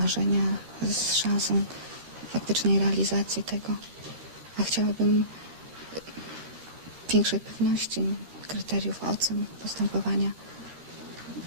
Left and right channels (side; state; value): left; late; 13 ms